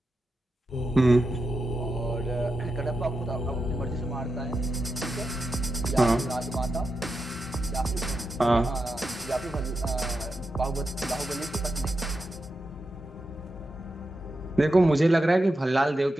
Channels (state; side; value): normal; both; correlation 0.89